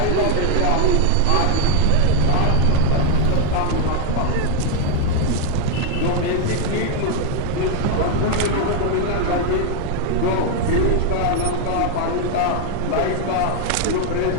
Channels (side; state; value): both; different; correlation 0.00